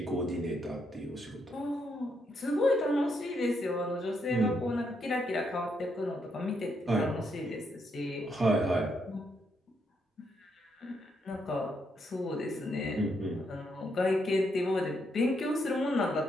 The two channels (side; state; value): both; normal; correlation 0.77